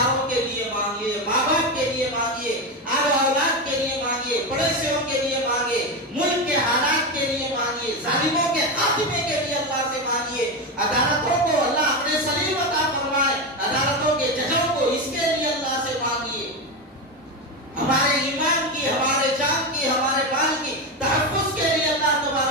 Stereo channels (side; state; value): both; normal; correlation 0.15